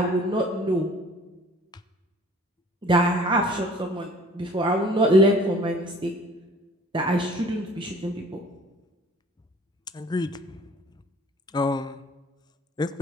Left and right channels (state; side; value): normal; both; correlation 0.50